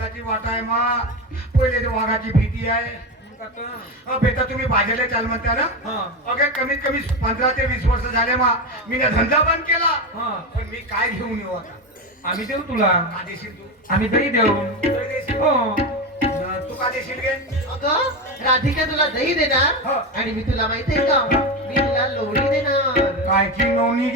वाट आहे मा पहिले वाघाची भीती आहे. बेटा तुम्ही बाजारला चाल म्हणता ना. अगे कमीत कमी 15 ते 20 वर्ष झाले मा मी ना धंदा बंद केला. पण मी काय घेऊन येऊ आता. आम्ही देऊ तुला. का देशील तू. आम्ही दही देऊ. दही देशील? हो तू का देशील गे. अगं राधिका तुला दही देणार हो. आणि मी तुला माहितीये का मी तुला लोणी देणार. कायची नोनी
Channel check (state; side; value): normal; both; correlation 0.17